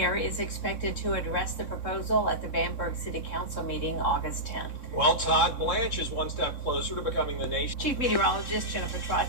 is expected to address the proposal at the Bamberg City Council meeting August 10th. Well, Todd Blanche is one step closer to becoming the nation's Chief Meteorologist Jennifer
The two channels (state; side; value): late; right; 3.6 ms